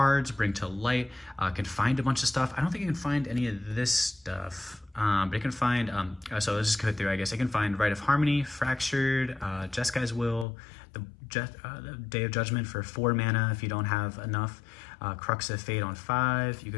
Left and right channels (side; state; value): right; drops out; at 10.5 s